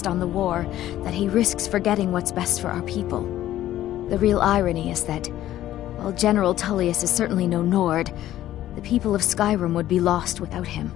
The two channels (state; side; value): quieter; right; 13.4 dB